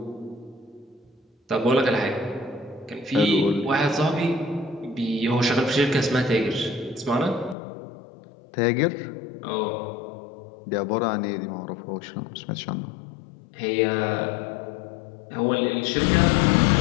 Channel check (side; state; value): right; drops out; at 7.6 s